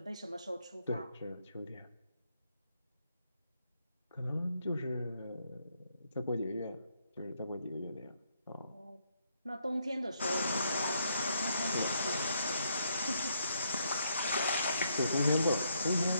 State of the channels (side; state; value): both; inverted; correlation -0.75